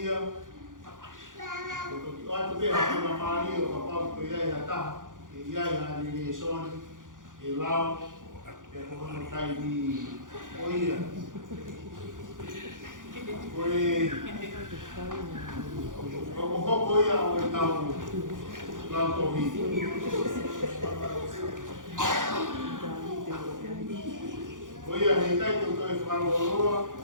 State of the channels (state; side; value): late; left; 0.88 ms